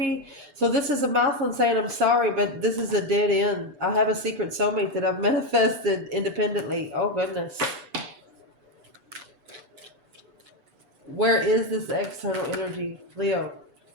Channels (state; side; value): late; left; 6.9 ms